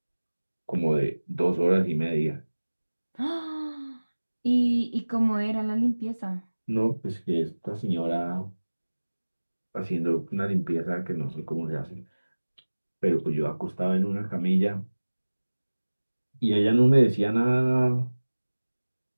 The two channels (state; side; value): inverted; both; correlation -1.00